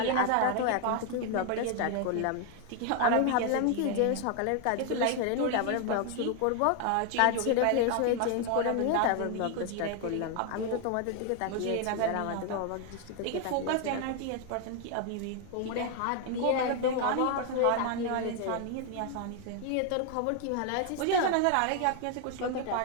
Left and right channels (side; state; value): both; different; correlation 0.00